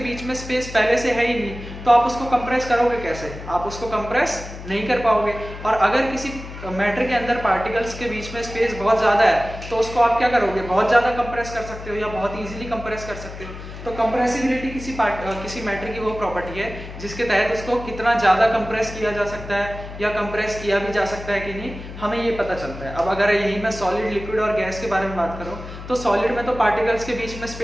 बीच में स्पेस पहले से है ही नहीं तो आप उसको कंप्रेस करोगे कैसे? आप उसको कंप्रेस नहीं कर पाओगे। और अगर किसी मैटर के अंदर पार्टिकल्स के बीच में स्पेस बहुत ज्यादा है तो उसको आप क्या करोगे, बहुत ज्यादा कंप्रेस कर सकते हो या बहुत इजीली कंप्रेस कर सकते हो। तो कंप्रेसिबिलिटी किसी मैटर की वो प्रॉपर्टी है जिसके तहत उसको कितना ज्यादा कंप्रेस किया जा सकता है या कंप्रेस किया भी जा सकता है कि नहीं, हमें ये पता चलता है। अब अगर यही मैं सॉलिड, लिक्विड और गैस के बारे में बात करूं तो सॉलिड में तो पार्टिकल्स के बीच में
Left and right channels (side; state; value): left; noise; hum, 12 dB below the sound